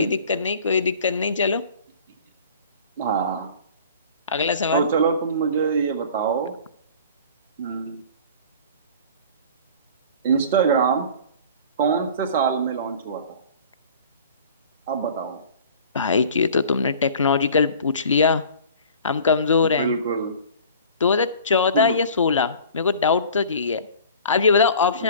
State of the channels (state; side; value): inverted; both; correlation -0.44